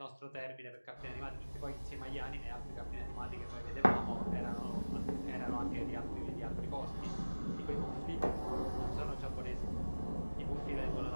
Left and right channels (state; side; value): inverted; both; correlation -1.00